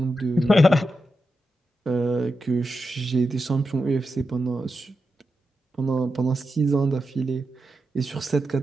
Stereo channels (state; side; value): normal; both; correlation 0.88